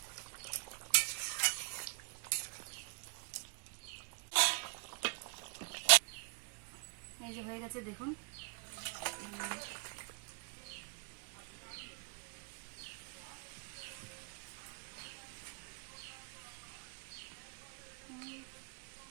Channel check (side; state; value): left; quieter; 35.1 dB